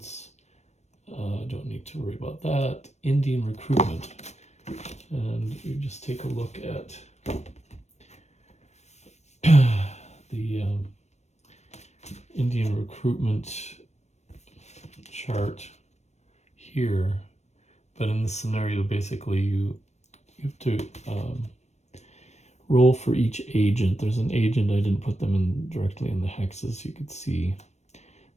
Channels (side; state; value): right; late; 0.32 ms